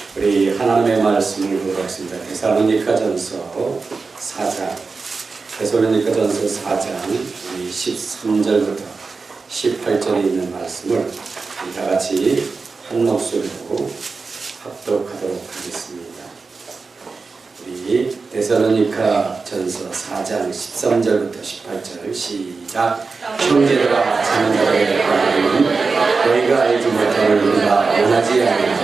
우리 하나님의 말씀을 보도록 하겠습니다. 데살로니가전서 4장, 데살로니가전서 4장 13절부터 18절에 있는 말씀을 다 같이 한 목소리로 합독하도록 하겠습니다. 우리 데살로니가전서 4장 13절부터 18절 시작. 형제들아, 자는 자들의 관계는 너희가 알지 못함을 우리가 원하지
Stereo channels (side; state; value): left; quieter; 4.4 dB